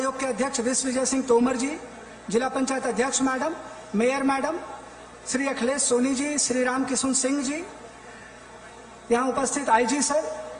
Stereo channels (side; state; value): both; identical; correlation 1.00